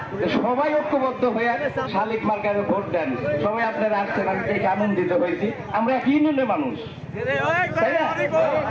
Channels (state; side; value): identical; both; correlation 1.00